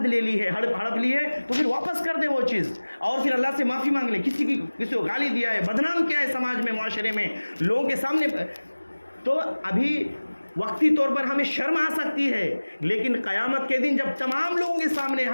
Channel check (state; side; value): inverted; both; correlation -1.00